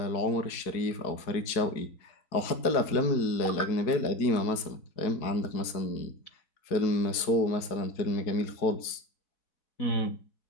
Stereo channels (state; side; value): late; right; 4.6 ms